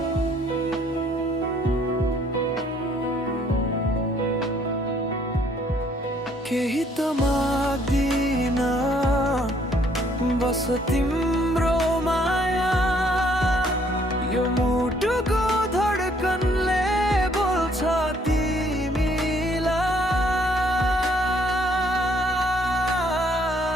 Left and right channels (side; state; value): both; normal; correlation 0.65